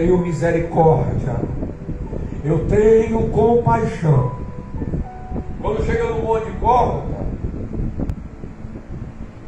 misericórdia, eu tenho compaixão. Quando chega no Monte Gólgota,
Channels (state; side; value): identical; both; correlation 1.00